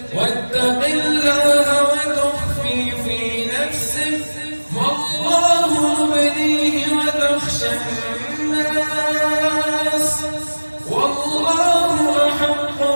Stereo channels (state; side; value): inverted; both; correlation -1.00